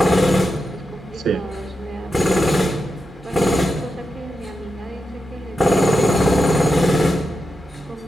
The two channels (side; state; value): both; normal; correlation 0.88